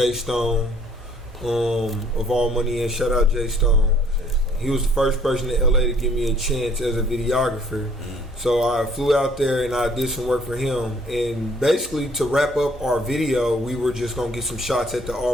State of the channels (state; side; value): normal; both; correlation 0.60